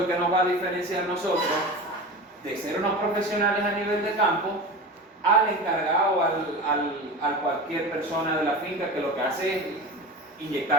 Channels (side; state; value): both; normal; correlation 0.30